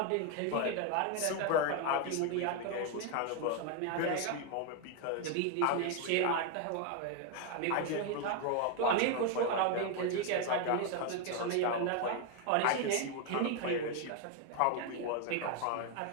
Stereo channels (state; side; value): different; both; correlation 0.01